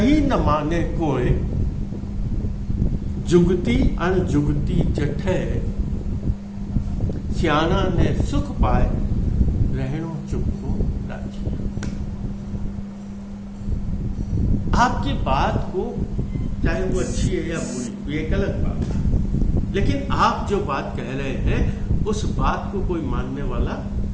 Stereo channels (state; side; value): identical; both; correlation 1.00